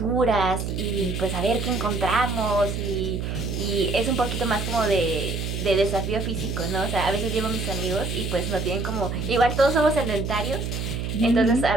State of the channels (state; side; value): noise; right; hum, 3 dB below the sound